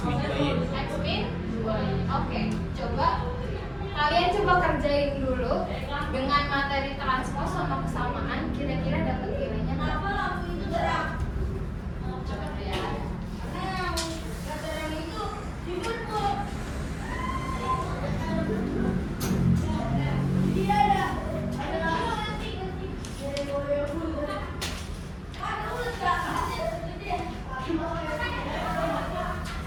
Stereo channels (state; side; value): identical; both; correlation 1.00